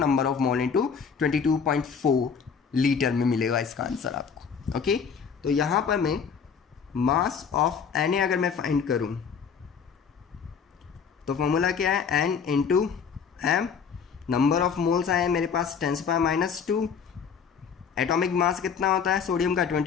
of mole into 22.4 litre में मिलेगा इसका आंसर आपको। ओके, तो यहाँ पर मैं मास ऑफ Na अगर मैं फाइंड करूँ तो फॉर्मूला क्या है N into m, number of moles आए हैं मेरे पास 10⁻², एटॉमिक मास कितना होता है सोडियम का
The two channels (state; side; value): quieter; right; 6.4 dB